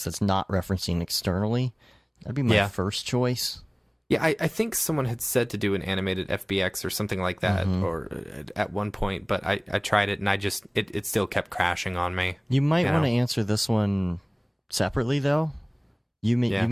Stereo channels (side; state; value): both; identical; correlation 1.00